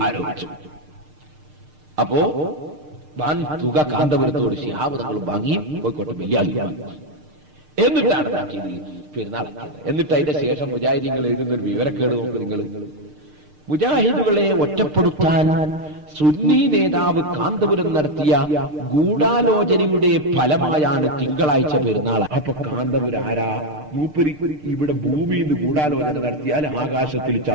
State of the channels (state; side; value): late; left; 6.6 ms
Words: ആരോപിച്ചു. അപ്പോ വൻ തുക കാന്തപുരത്തോട് ശിഹാബ് തങ്ങൾ വാങ്ങി കോഴിക്കോട്ടെ ബലിയാക്കി. എന്നിട്ടാണ് പെരുന്നാളാക്കിയത്. എന്നിട്ട് അതിന്റെ ശേഷം മുജാഹിദീങ്ങൾ എഴുതുന്ന ഒരു വിവരക്കേട് നോക്ക് നിങ്ങൾ. മുജാഹിദുകളെ ഒറ്റപ്പെടുത്താൻ സുന്നി നേതാവ് കാന്തപുരം നടത്തിയ ഗൂഢാലോചനയുടെ ഫലമായാണ് തിങ്കളാഴ്ച പെരുന്നാൾ. അപ്പൊ കാന്തപുരം ആരാ? മൂപ്പരി ഇവിടെ ഭൂമിയിൽ നിന്ന് ഗൂഢാലോചന നടത്തിയാൽ ആകാശത്തിൽ